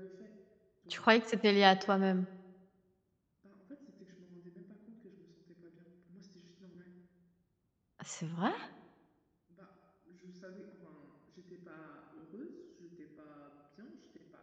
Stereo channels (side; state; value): both; identical; correlation 1.00